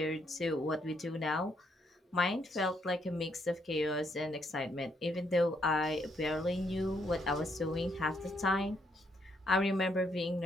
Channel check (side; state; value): both; normal; correlation 0.73